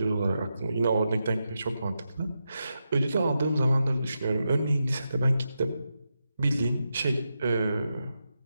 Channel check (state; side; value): inverted; both; correlation -0.87